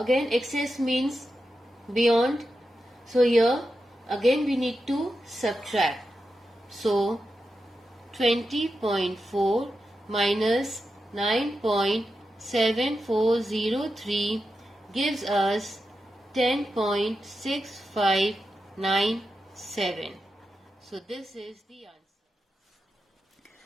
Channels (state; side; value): normal; both; correlation 0.89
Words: excess means beyond. So here again we need to subtract. So 20.4 minus 9.7403 gives us 10.6597. So this is the answer.